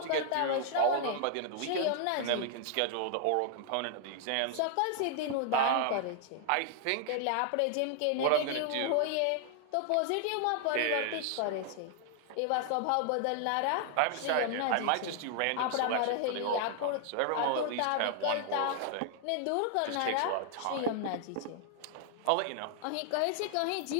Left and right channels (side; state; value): both; different; correlation 0.00